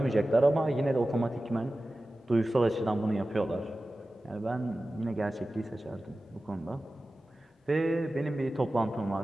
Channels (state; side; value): normal; both; correlation 0.95